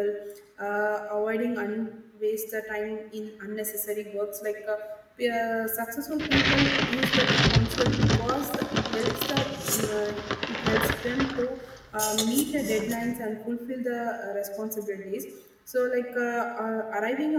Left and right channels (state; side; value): identical; both; correlation 1.00